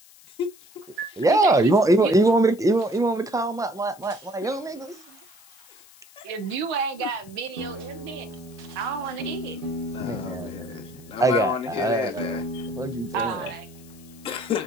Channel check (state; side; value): noise; left; hiss, 24 dB below the sound